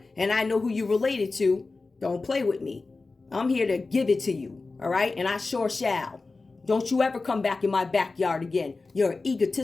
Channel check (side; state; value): right; quieter; 3.7 dB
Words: And I know who you related to. Don't play with me. I'm here to give it to you. All right? And I sure shall. Don't you ever come back in my backyard again. You're an